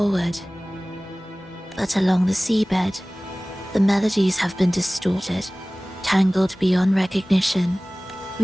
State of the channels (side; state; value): both; normal; correlation 0.98